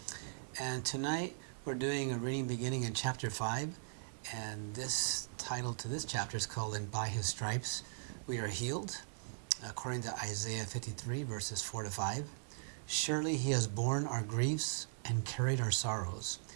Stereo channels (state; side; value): silent; left; digital silence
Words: and tonight we're doing a reading beginning in chapter 5, and this title to this chapter is called "And by His Stripes We Are Healed," according to Isaiah 53 verses 4 to 5. Surely He has borne our griefs and carried our sorrows,